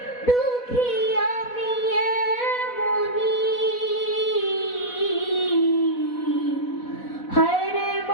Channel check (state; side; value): late; right; 4.1 ms